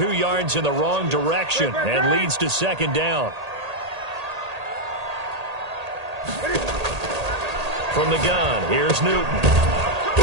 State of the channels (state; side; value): late; left; 1.8 ms